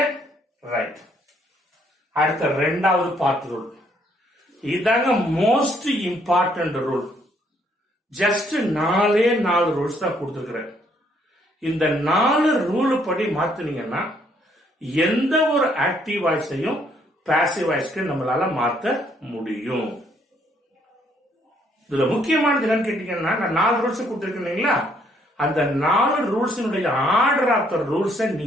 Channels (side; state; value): both; normal; correlation 0.68